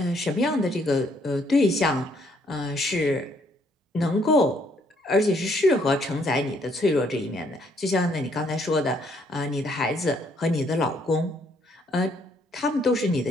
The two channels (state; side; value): normal; both; correlation 0.68